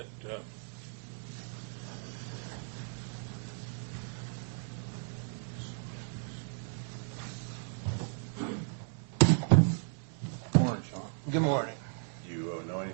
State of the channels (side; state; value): left; silent; 55 dB below the other